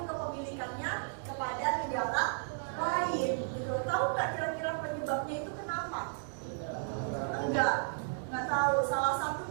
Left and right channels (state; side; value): silent; left; digital silence